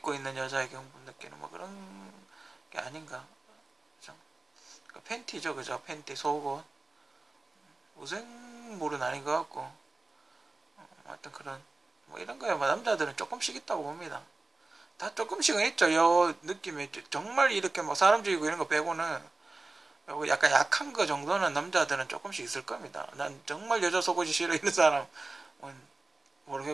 있는 여자에게 흥분 느끼는 뭐 그런 게 아닌가, 그죠? 그러니까 팬티죠, 그죠? 팬티, 속옷. 무생물은 아닌 것 같고, 하여튼 그런 뭐 이런 거야. 뭐 남자들은 조금씩 있다고 봅니다. 다 조금씩은 있죠. 요 느낌이 정말 이렇게 뭐 사람 죽이고 이런 거 빼고는 약간 약한 거 정도는 남자들은 조금씩 있을 겁니다. 난 정말 여자 속옷이 싫어 이런 사람은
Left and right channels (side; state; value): left; quieter; 3.3 dB